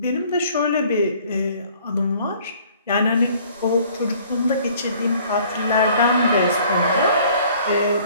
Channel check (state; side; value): inverted; both; correlation -0.55